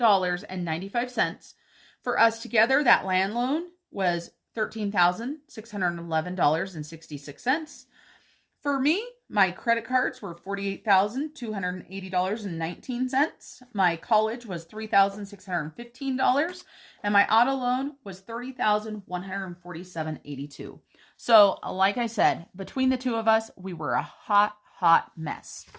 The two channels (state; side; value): identical; both; correlation 1.00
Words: For us together, that land loan was $13,611.66. For me, my credit cards were $48,280.19. My college was $3,615. And my auto loan was $30,147.82. So, like I said, between the two of us, we were a hot mess.